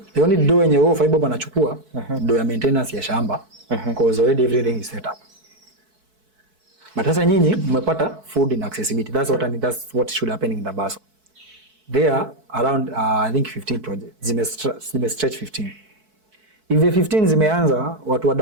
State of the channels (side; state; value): left; late; 4.6 ms